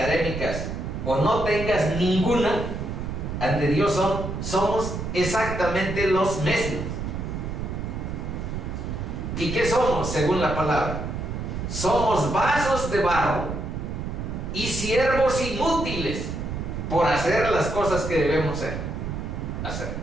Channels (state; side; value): noise; right; rumble, 5 dB below the sound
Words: o no tengas ninguna, ante Dios somos exactamente los mismos. ¿Y qué somos según la palabra? Somos vasos de barro y siervos inútiles por hacer las cosas que debemos hacer.